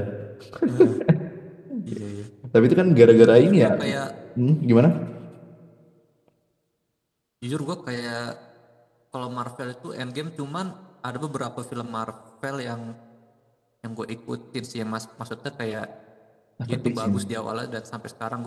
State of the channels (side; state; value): both; identical; correlation 1.00